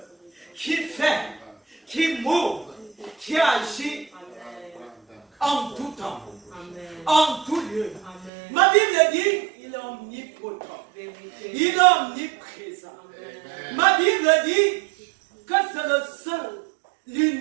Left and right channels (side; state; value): left; drops out; at 8.3 s